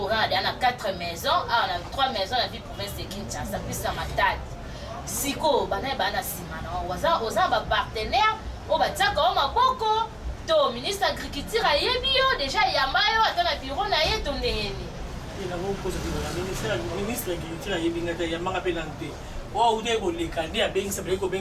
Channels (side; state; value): both; identical; correlation 1.00